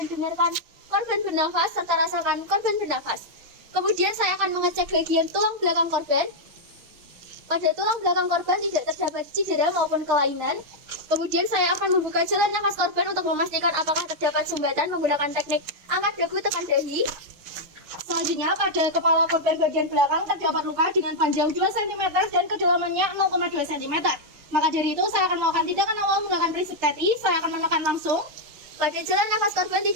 dengarkan korban bernafas serta rasakan korban bernafas. Kemudian saya akan mengecek bagian tulang belakang korban. Pada tulang belakang korban tidak terdapat cedera maupun kelainan. Kemudian saya akan membuka jalan nafas korban untuk memastikan apakah terdapat sumbatan menggunakan teknik angkat dagu tekan dahi. Selanjutnya pada kepala korban bagian belakang terdapat luka dengan panjang 2 cm dan kedalamannya 0,2 cm. Maka dari itu saya akan melakukan tindakan awal menggunakan prinsip TETI. Saya akan menekan langsung. Pada jalan nafas korban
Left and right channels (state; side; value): late; left; 6.5 ms